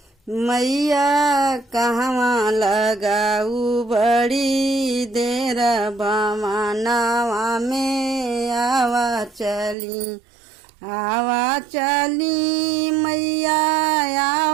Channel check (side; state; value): left; drops out; at 9.8 s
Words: मैया कहवा लगाऊ बड़ी देर भवनवा में आवा चली। आवा चली मैया